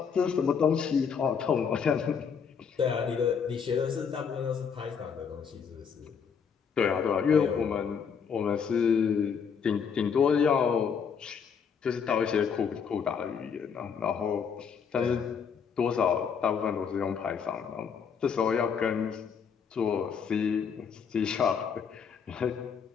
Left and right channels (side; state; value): right; quieter; 6.6 dB